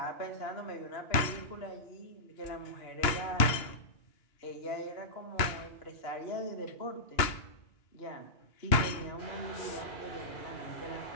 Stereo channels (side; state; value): right; late; 2.8 ms